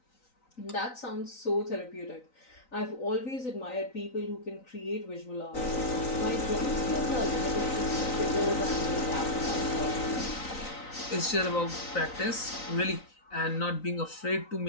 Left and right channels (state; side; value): late; right; 3.9 ms